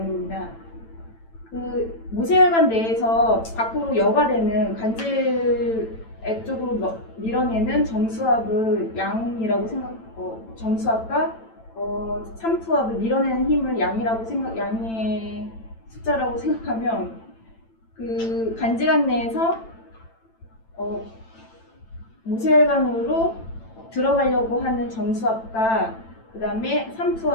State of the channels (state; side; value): late; right; 9.0 ms